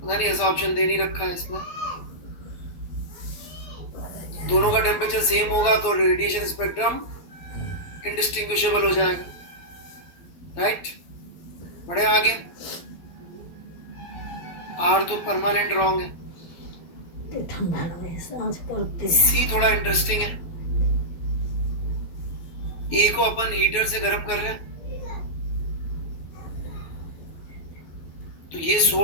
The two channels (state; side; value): late; right; 12 ms